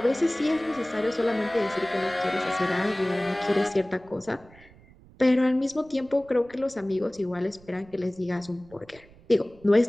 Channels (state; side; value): noise; right; rumble, 25 dB below the sound